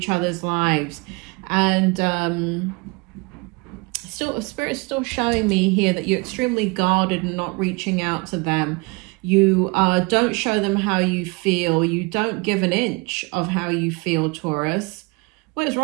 other's lives. And Spirit's still showing me here that you're extremely guarded and not reaching out to them. You don't show them how you feel. You don't give an inch of how you feel, Taurus. What is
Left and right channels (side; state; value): left; quieter; 28.4 dB